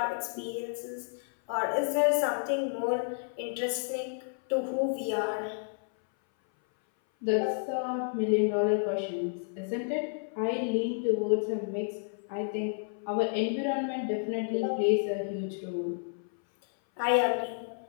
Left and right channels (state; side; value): silent; right; 57 dB below the other